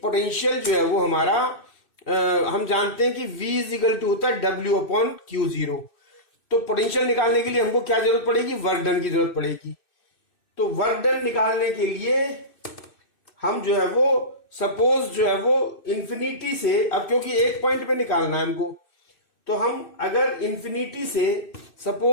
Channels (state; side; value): late; right; 2.6 ms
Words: पोटेंशियल जो है वो हमारा हम जानते हैं कि V इज इक्वल टू होता है W/Q0. तो पोटेंशियल निकालने के लिए हमको क्या जरूरत पड़ेगी? वर्क डन की जरूरत पड़ेगी. तो वर्क डन निकालने के लिए हम जो है वो सपोज जो है वो इंफिनिटी से, अब क्योंकि एक पॉइंट पे निकालना है हमको, तो हम अगर इंफिनिटी से